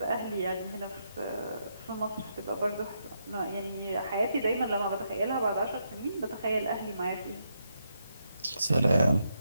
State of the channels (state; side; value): inverted; both; correlation -0.80